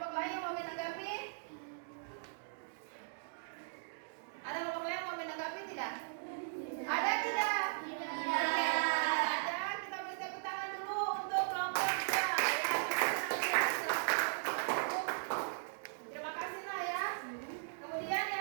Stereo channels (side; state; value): left; silent; digital silence